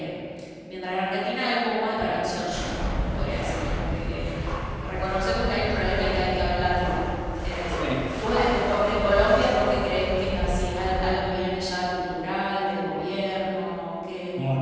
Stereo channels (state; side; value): identical; both; correlation 1.00